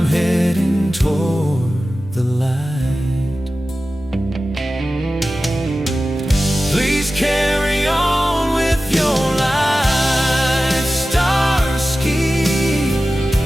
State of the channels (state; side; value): normal; both; correlation 0.95